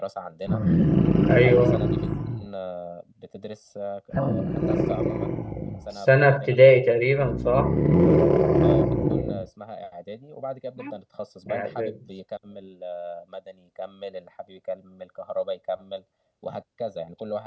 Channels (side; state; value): both; identical; correlation 1.00